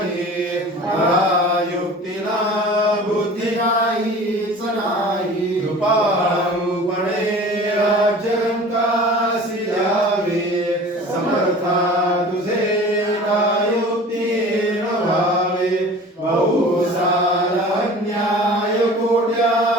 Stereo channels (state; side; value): normal; both; correlation 0.42